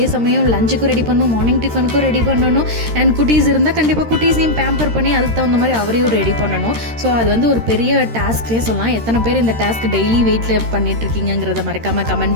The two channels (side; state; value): left; late; 13 ms